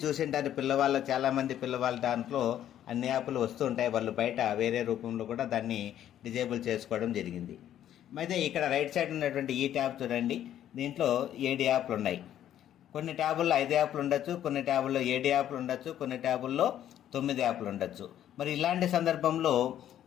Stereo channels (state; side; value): quieter; right; 11.1 dB